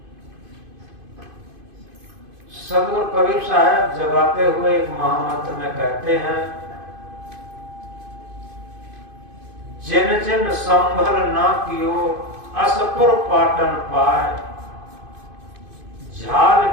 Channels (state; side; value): late; left; 2.5 ms